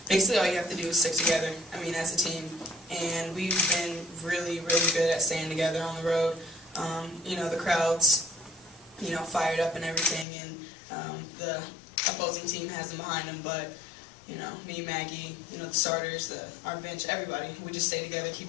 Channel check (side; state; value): right; drops out; at 10.2 s